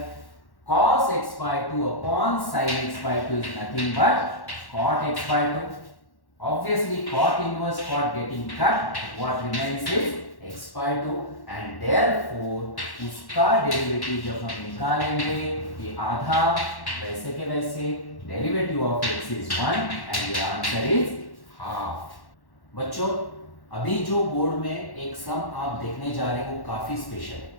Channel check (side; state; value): right; late; 1.1 ms